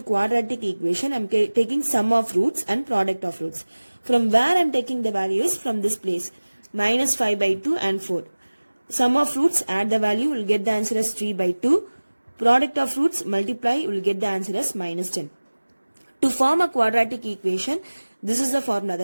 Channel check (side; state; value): both; inverted; correlation -1.00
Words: quadratic equation, I am taking sum of roots and product of roots. From where I am taking the values? From this place, minus 5 by 2 and 4. Sum of roots, add the value, will get the answer as 3 by 2. Product of roots, multiply, you will get the answer as minus 10. To form a quadratic equation, this is the formula,